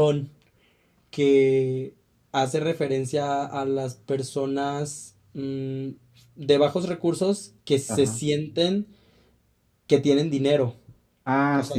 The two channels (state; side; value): identical; both; correlation 1.00